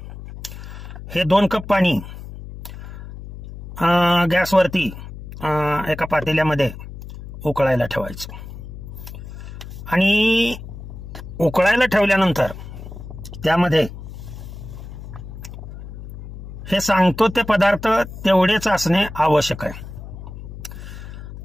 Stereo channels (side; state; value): left; noise; hum, 12 dB below the sound